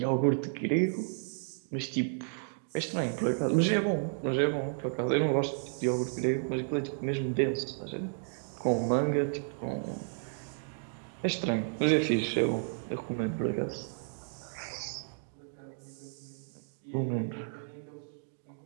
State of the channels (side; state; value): left; silent; digital silence